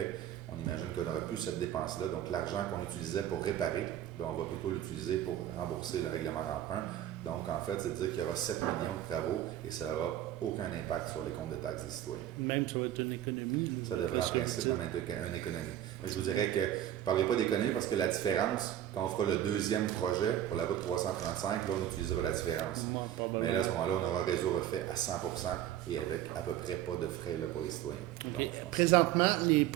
on imagine qu'on n'aura plus cette dépense-là. Donc, l'argent qu'on utilisait pour réparer, on va plutôt l'utiliser pour rembourser le règlement d'emprunt. Donc, en fait, c'est-à-dire qu'il y aura 7 millions de travaux et ça n'aura aucun impact sur les comptes de taxes des citoyens. Même ça va être une économie. Ça devrait en principe même être une économie. Mais je vous dirais que je ne parlerai pas d'économie parce que la différence, quand on fera le deuxième projet pour la route 335, là, on utilisera la différence. Mais là, à ce moment-là, on aura un réseau refait à 100% et avec à peu près pas de frais là, pour les citoyens. Okay. Donc, présentement, les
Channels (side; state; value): left; quieter; 11.9 dB